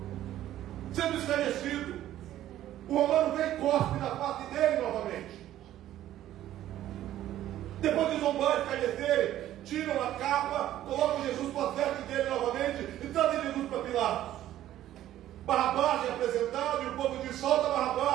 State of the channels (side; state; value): left; quieter; 12.9 dB